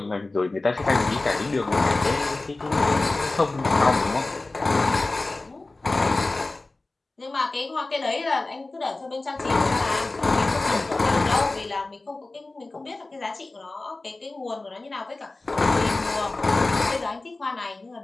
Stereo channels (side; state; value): right; quieter; 3.2 dB